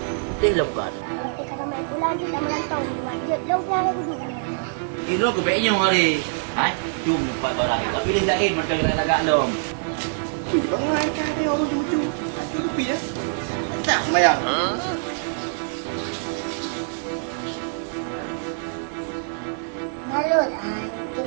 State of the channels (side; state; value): left; silent; 62 dB below the other